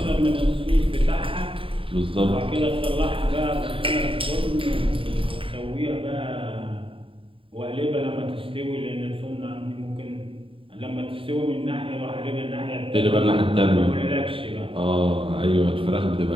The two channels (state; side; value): late; left; 0.26 ms